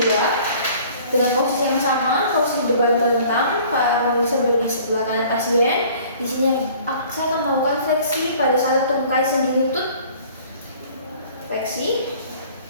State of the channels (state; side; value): inverted; both; correlation -0.51